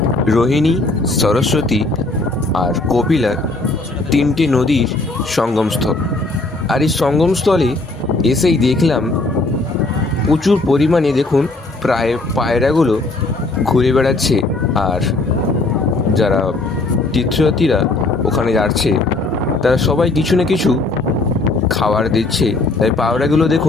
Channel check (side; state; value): right; quieter; 3.2 dB